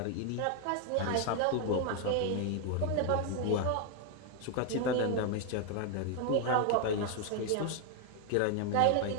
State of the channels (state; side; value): different; both; correlation 0.00